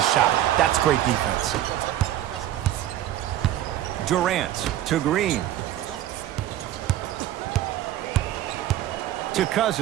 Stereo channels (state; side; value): quieter; left; 12.9 dB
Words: shot. That's great defense. Durant to Green. To